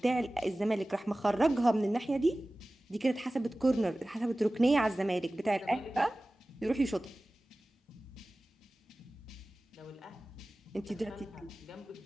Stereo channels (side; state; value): both; normal; correlation 0.97